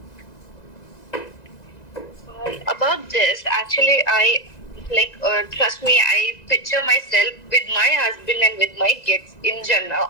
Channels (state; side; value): late; right; 1.9 ms